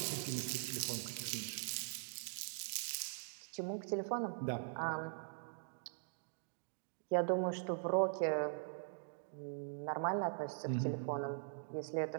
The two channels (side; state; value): left; silent; digital silence